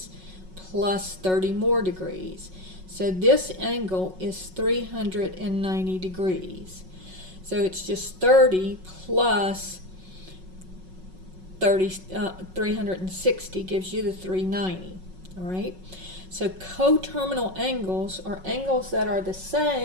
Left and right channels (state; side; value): late; left; 5.4 ms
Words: plus 30 more degrees. So this angle is 390 degrees. So it's just 30 plus 360 gives you the 390, all right? So coterminal angles are angles that are the